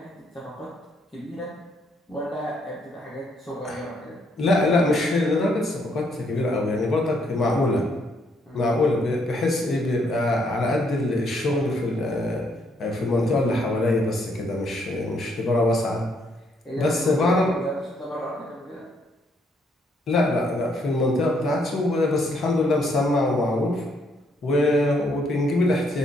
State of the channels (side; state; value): both; normal; correlation 0.71